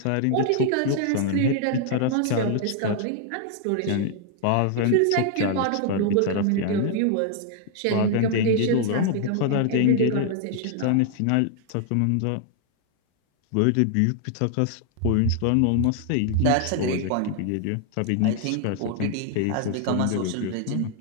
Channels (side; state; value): both; different; correlation 0.00